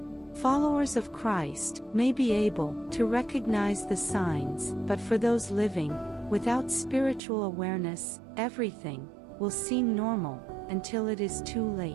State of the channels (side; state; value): left; drops out; at 7.2 s